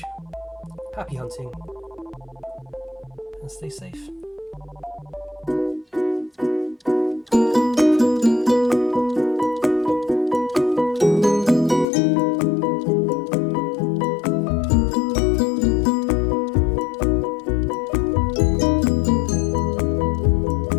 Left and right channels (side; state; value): right; drops out; at 11.9 s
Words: Happy hunting and stay safe.